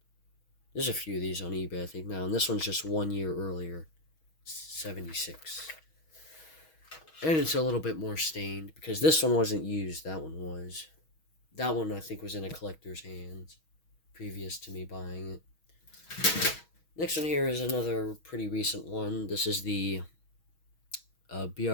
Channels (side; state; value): right; late; 6.3 ms